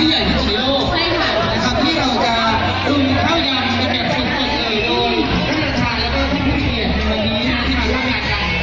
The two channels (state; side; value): identical; both; correlation 1.00